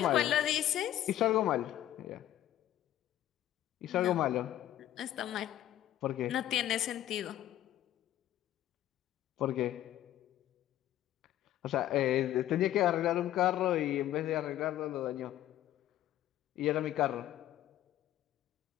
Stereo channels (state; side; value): quieter; right; 12.8 dB